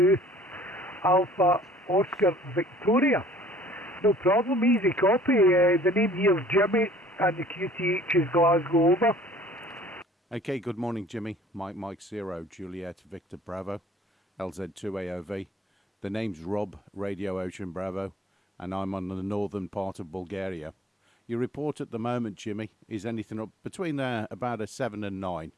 Alpha Oscar Victoria. No problem, easy copy. The name here is Jimmy and the QTH is Glasgow over. Okay, good morning, Jimmy. Mike 0, Juliet Victor Bravo, LZ2AOV. The name's Rob, Radio Ocean Bravo, and I'm on the northern part of Bulgaria. Your report at the moment, Jimmy, is anything up between about a 7 and 9.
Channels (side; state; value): both; normal; correlation 0.54